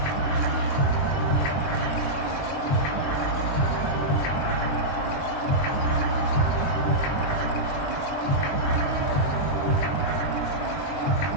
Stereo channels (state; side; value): late; right; 22 ms